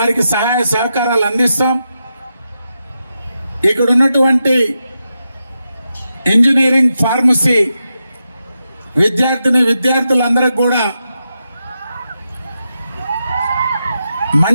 సహాయ సహకారాలు అందిస్తాం. ఇక్కడ ఉన్నటువంటి ఇంజనీరింగ్, ఫార్మసీ విద్యార్థులందరికీ కూడా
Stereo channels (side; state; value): both; inverted; correlation -0.87